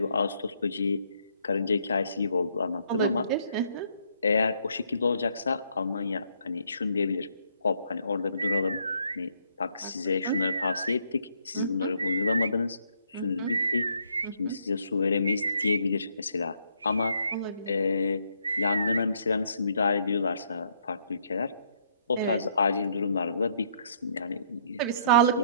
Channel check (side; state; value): both; inverted; correlation -0.69